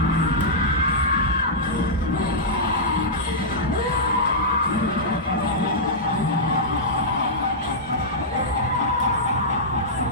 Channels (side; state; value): both; normal; correlation -0.11